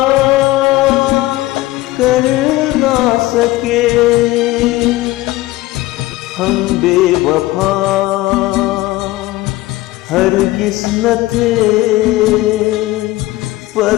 कर ना सके। हम बेवफा हरगिज न थे,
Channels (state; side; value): quieter; right; 18.0 dB